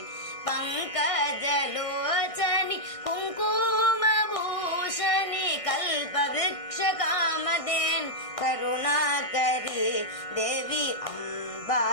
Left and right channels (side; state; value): right; late; 1.6 ms